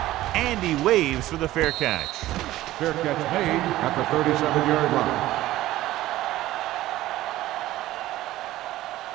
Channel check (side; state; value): left; quieter; 15.6 dB